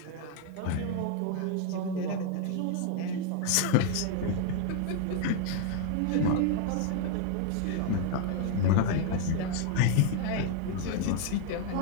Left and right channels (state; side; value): different; both; correlation 0.00